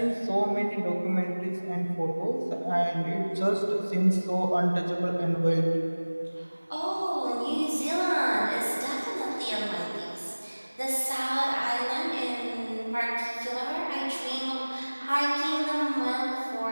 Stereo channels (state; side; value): inverted; both; correlation -1.00